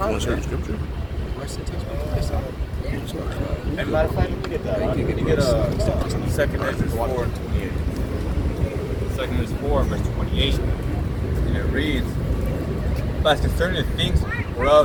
scripture? And matter of fact, let me get that. Let me get 2 Ezra 4 and 28. 2 Ezra 4, verse 28, and it reads, but concerning the things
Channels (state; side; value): identical; both; correlation 1.00